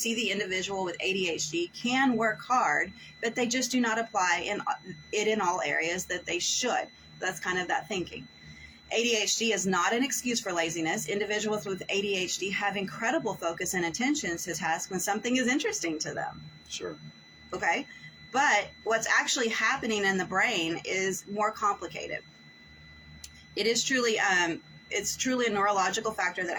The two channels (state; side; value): identical; both; correlation 1.00